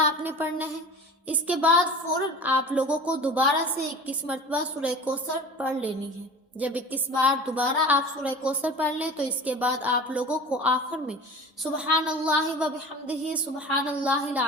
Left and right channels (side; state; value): both; normal; correlation 0.38